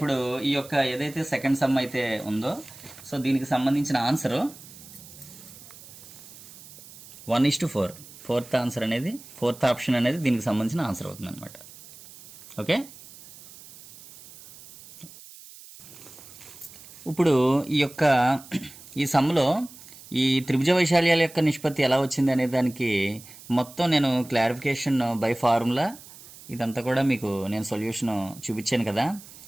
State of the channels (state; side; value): noise; right; hiss, 19 dB below the sound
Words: ఈ యొక్క ఏదైతే సెకండ్ సమ్ అయితే ఉందో, సో దీనికి సంబంధించిన ఆన్సరు 1:4. ఫోర్త్ ఆప్షన్ అనేది దీనికి సంబంధించిన ఆన్సర్ అవుతుంది అనమాట. ఓకే, ఇప్పుడు ఈ సమ్లో ఈ త్రిభుజ వైశాల్యాల యొక్క నిష్పత్తి ఎలా వచ్చింది అనే దానికి మొత్తం నేను క్లారిఫికేషన్ బై ఫార్ములా ఇదంతా కూడా మీకు నేను సొల్యూషన్ చూపించాను కదా.